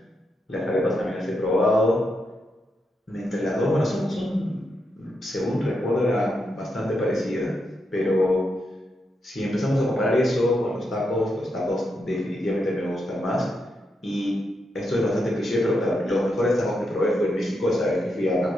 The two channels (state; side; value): normal; both; correlation 0.83